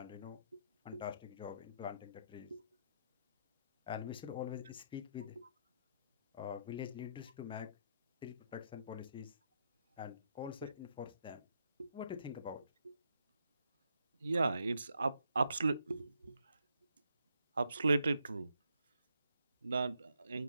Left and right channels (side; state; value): both; inverted; correlation -0.78